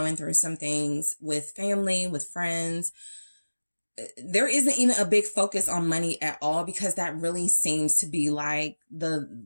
through some things with family, with friends. There isn't even a big focus on money at all because that really seems to be like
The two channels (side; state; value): both; inverted; correlation -1.00